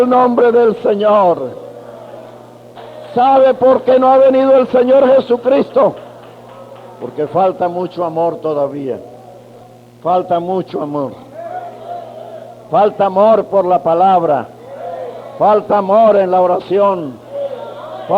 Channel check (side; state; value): both; identical; correlation 1.00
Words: nombre del Señor. ¿Sabe por qué no ha venido el Señor Jesucristo? Porque falta mucho amor todavía. Falta mucho amor. Falta amor por la palabra. Falta amor en la oración.